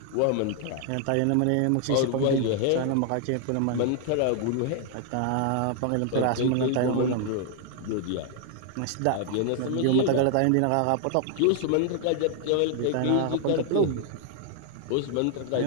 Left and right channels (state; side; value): different; both; correlation 0.00